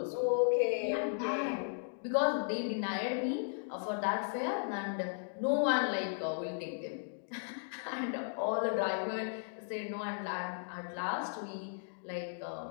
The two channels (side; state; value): right; silent; digital silence